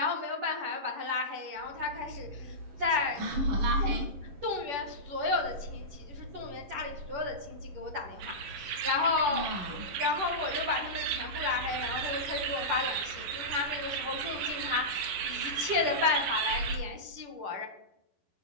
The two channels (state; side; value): late; left; 10 ms